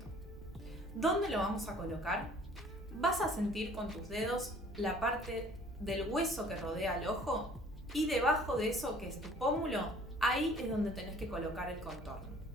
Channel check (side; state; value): both; normal; correlation 0.53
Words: ¿Dónde lo vamos a colocar? Vas a sentir con tus dedos la parte del hueso que rodea el ojo y debajo de eso, que es tu pómulo, ahí es donde tenés que colocar el contorno.